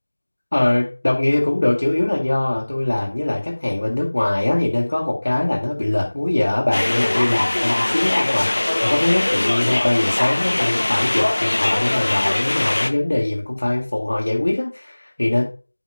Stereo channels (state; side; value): inverted; both; correlation -1.00